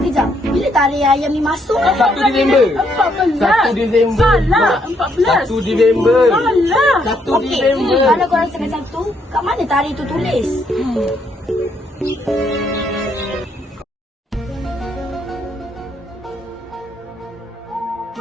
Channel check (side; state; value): both; normal; correlation 0.73